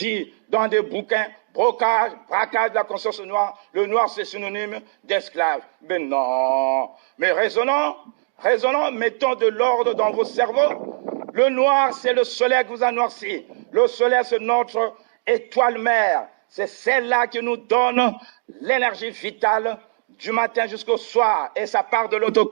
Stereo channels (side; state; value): left; silent; digital silence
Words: dans des bouquins, braquage de la conscience noire, le noir c'est synonyme d'esclave. Mais non. Mais raisonnons, mettons de l'ordre dans vos cerveaux. Le noir, c'est le soleil qui vous a noirci. Le soleil, c'est notre étoile mère. C'est celle-là qui nous donne l'énergie vitale du matin jusqu'au soir. Et ça part de l'autre